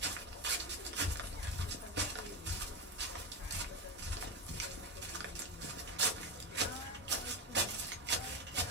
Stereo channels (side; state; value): both; normal; correlation 0.16